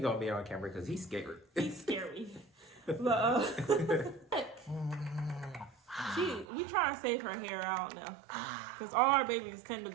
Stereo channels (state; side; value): drops out; left; at 6.5 s